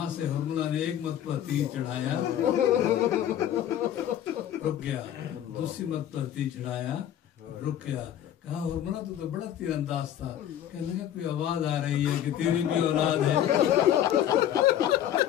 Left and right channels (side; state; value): right; quieter; 10.9 dB